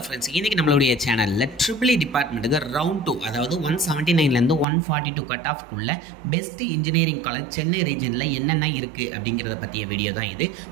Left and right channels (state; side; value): drops out; left; at 4.7 s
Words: friends, இன்றைக்கி நம்மளுடைய சேனலில் ட்ரிபிள் டிபார்ட்மெண்ட்டுக்கு ரவுண்ட் 2, அதாவது 179லேருந்து 142 கட் ஆஃப்குள்ளே பெஸ்ட் இன்ஜினியரிங் காலேஜ் சென்னை ரீஜனில் என்னென்ன இருக்குது அப்படிங்கிறத பற்றிய வீடியோ தான் இது.